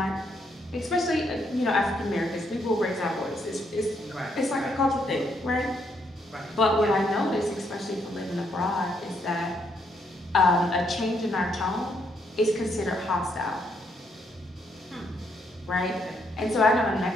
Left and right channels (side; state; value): both; normal; correlation 0.74